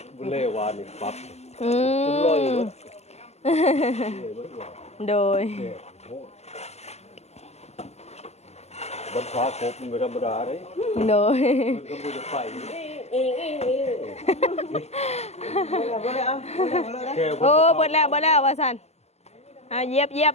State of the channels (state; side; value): late; right; 0.31 ms